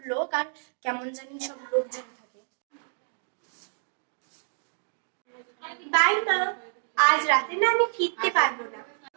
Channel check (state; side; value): silent; left; 59 dB below the other